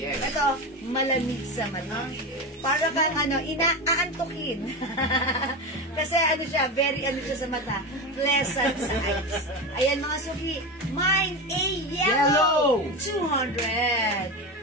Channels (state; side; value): normal; both; correlation 0.21